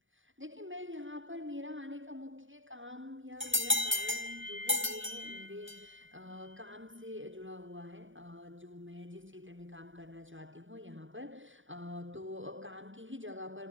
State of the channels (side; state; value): left; late; 0.57 ms